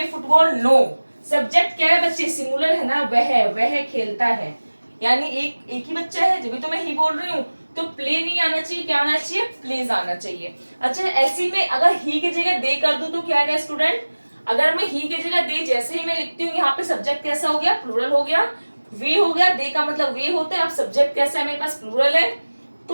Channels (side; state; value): both; inverted; correlation -1.00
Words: फुटबॉल, नो। सब्जेक्ट क्या है बच्चे, सिंगुलर है ना, वह खेलता है, यानी एक ही बच्चा है, जब भी तो मैं ही बोल रही हूँ। तो प्ले नहीं आना चाहिए, क्या आना चाहिए, प्लेज आना चाहिए। अच्छा, ऐसी में अगर ही की जगह दे कर दूं तो क्या आएगा स्टूडेंट, अगर मैं ही की जगह दे जैसे ही मैं लिखती हूँ, यहाँ पे सब्जेक्ट कैसा हो गया, प्लूरल हो गया, वे हो गया, दे का मतलब वे होता है। अब सब्जेक्ट कैसा है, मेरे पास प्लूरल है,